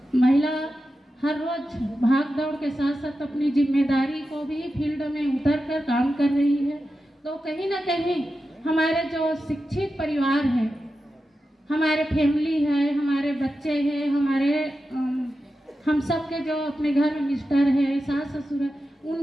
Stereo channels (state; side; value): normal; both; correlation 0.91